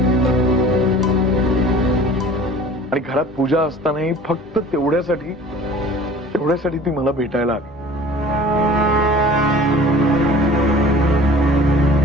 आणि घरात पूजा असतानाही फक्त तेवढ्यासाठी ती मला भेटायला आली.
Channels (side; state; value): both; normal; correlation 0.46